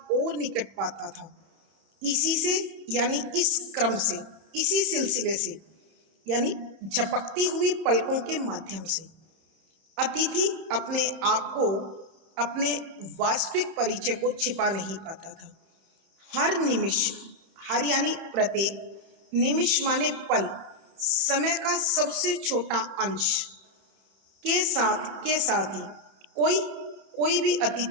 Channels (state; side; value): late; left; 31 ms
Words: और निकट पाता था। इसी से यानी इस क्रम से, इसी सिलसिले से यानी झपकती हुई पलकों के माध्यम से अतिथि अपने आप को, अपने वास्तविक परिचय को छिपा नहीं पाता था। हर निमिष, हर यानी प्रत्येक, निमिष माने पल, समय का सबसे छोटा अंश के साथ ही कोई भी